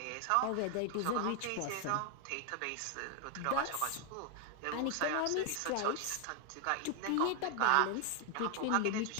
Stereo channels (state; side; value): different; both; correlation 0.00